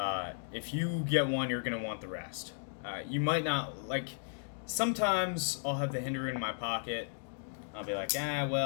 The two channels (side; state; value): right; silent; digital silence